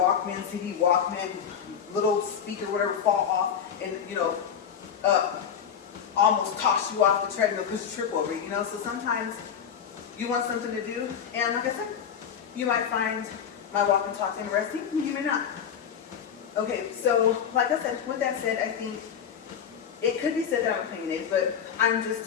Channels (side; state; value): right; quieter; 7.9 dB